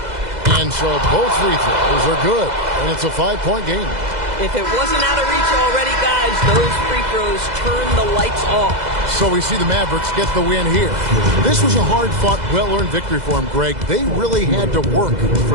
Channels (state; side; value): late; left; 2.0 ms